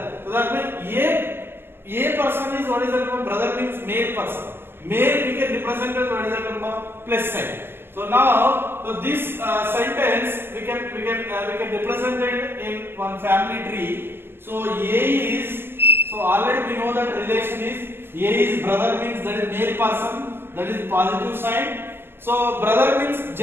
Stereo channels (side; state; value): left; late; 0.11 ms